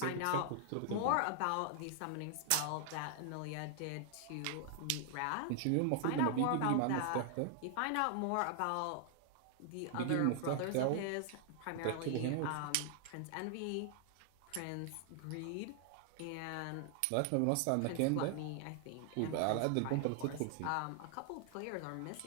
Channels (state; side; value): different; both; correlation 0.00